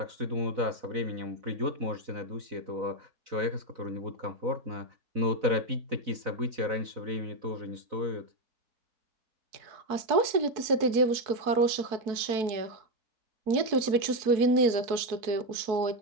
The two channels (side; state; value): left; late; 4.6 ms